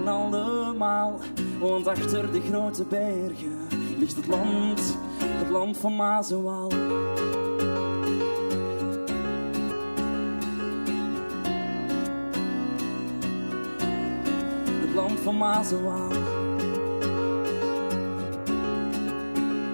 allemaal, want achter de grote bergen ligt het land van Maas en Waal. Het land van Maas en Waal.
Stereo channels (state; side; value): inverted; both; correlation -1.00